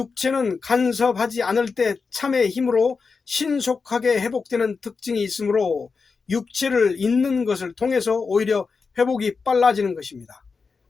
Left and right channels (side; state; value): right; quieter; 4.9 dB